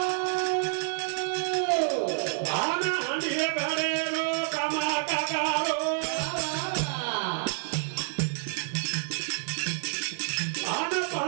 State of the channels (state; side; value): silent; left; 59 dB below the other